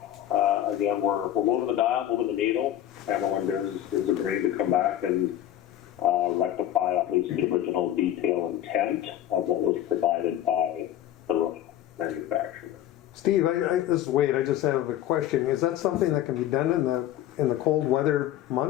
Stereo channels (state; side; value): quieter; right; 12.1 dB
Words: Again, we're moving the dial, moving the needle. Haviland is agreeing to come back and rectify at least the original detail intent of what was provided by the roof manufacturer. Steve, this is Wade. I just have a question. Is that something that can be done in the cold weather